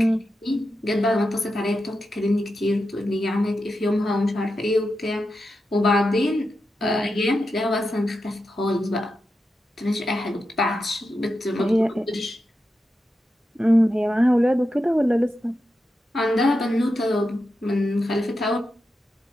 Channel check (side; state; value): both; normal; correlation 0.88